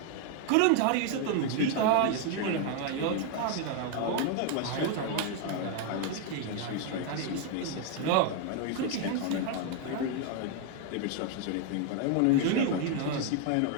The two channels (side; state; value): both; different; correlation 0.01